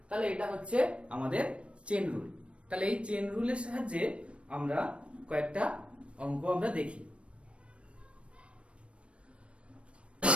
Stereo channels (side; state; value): left; late; 0.060 ms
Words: তাহলে এটা হচ্ছে আমাদের চেন রুল। তাহলে এই চেন রুলের সাহায্যে আমরা কয়েকটা অঙ্ক আমরা দেখি।